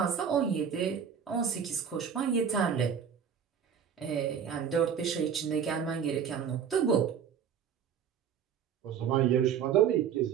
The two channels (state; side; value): quieter; left; 7.7 dB